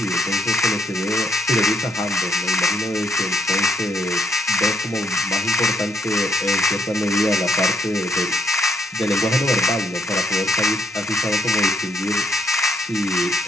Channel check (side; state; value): both; normal; correlation 0.72